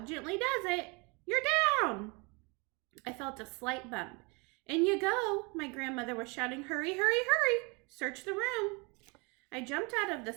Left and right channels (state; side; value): quieter; left; 29.4 dB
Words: Gently does it. You're down." I felt a slight bump. "In you go," my grandmother was shouting. "Hurry, hurry, hurry! Search the room." I jumped out of the